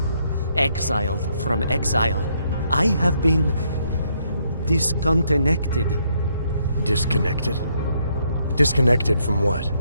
Exiled from exile. I have been disconnected. Disconnected? Disconnected from what?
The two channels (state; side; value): inverted; both; correlation -0.73